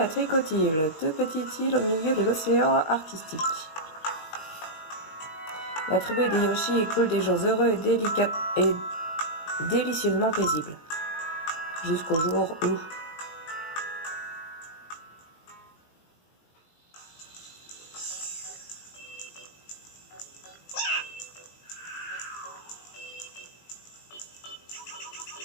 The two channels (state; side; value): late; right; 19 ms